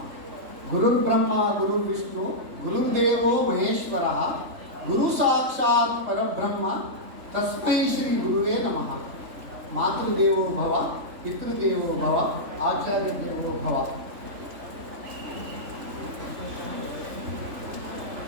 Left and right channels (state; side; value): late; left; 3.4 ms